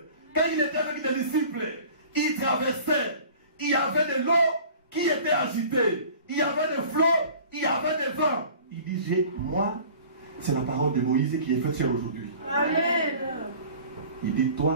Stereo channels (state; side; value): inverted; both; correlation -0.45